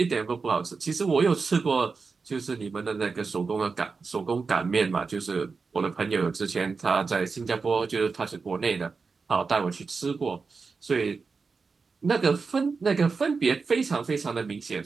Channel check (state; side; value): quieter; left; 4.7 dB